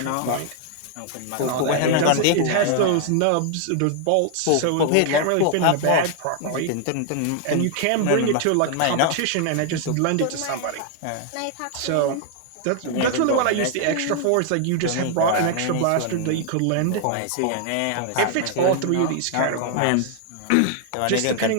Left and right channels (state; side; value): different; both; correlation 0.00